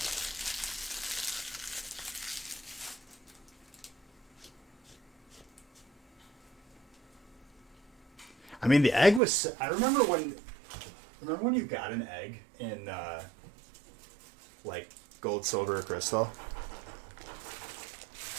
I mean, the egg was. I remember when. Remember when you got an egg in, like, gold, silver, or crystal?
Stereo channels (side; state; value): left; drops out; at 9.2 s